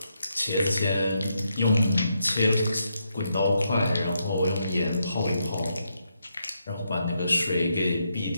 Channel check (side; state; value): both; inverted; correlation -0.80